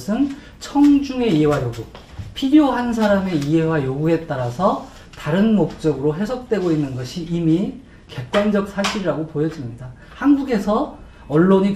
청중의 이해와 요구, 필요한 사람의 이해와 요구에 따라서 다른 목적으로 해석되고 있는 것이 이미 객관적 사실이라고 보여집니다. 한국에서 언론이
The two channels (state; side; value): identical; both; correlation 1.00